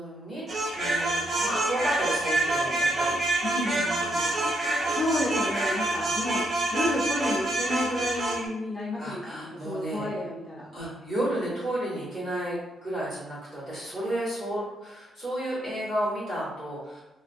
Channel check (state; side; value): normal; both; correlation 0.77